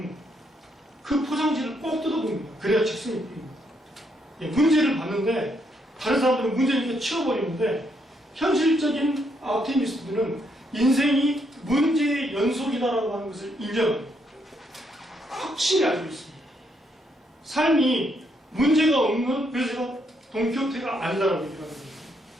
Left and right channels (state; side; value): normal; both; correlation 0.75